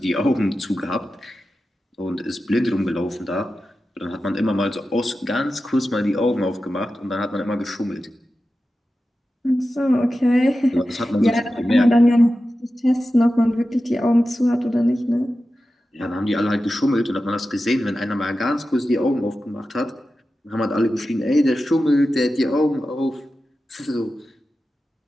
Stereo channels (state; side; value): normal; both; correlation 0.93